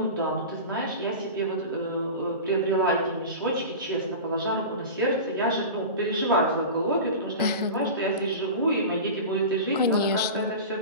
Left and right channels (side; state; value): both; inverted; correlation -0.30